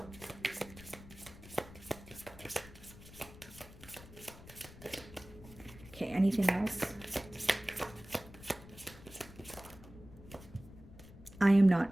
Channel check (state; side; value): noise; left; rumble, 18 dB below the sound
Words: Okay, anything else? I am not